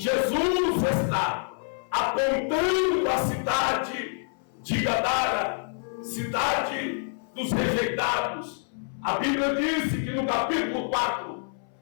está apontando a cidade de Gadara, cidade dos rejeitados. A Bíblia diz que no capítulo 4,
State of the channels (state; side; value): silent; right; 60 dB below the other